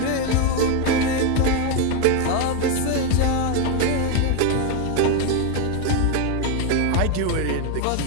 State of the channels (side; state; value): both; different; correlation 0.02